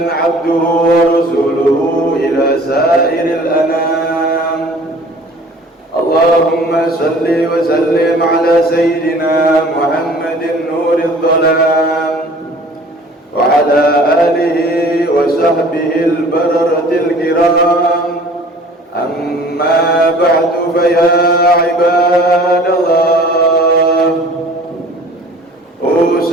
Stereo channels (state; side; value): normal; both; correlation 0.48